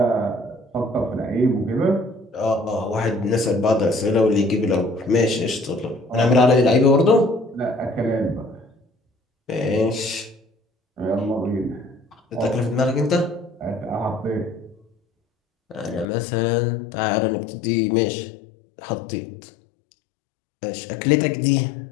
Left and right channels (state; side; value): drops out; right; at 16.1 s